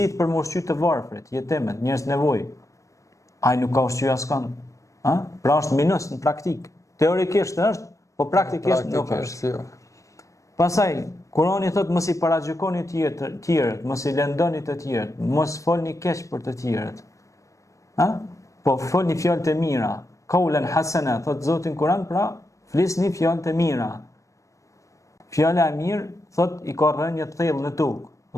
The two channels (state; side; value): late; right; 0.15 ms